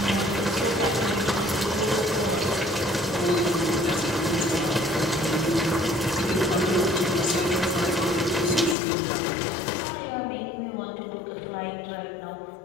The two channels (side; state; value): right; drops out; at 8.8 s